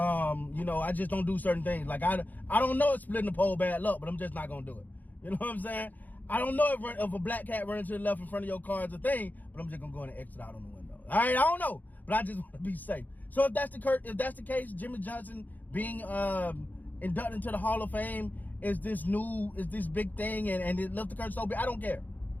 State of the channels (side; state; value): right; late; 0.083 ms